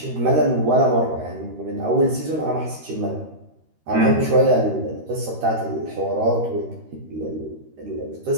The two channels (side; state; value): left; late; 13 ms